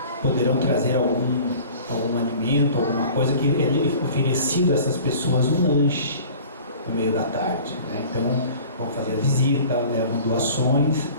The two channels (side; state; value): both; inverted; correlation -0.45